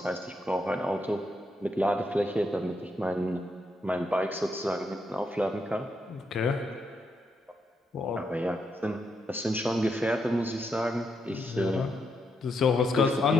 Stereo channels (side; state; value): both; normal; correlation 0.80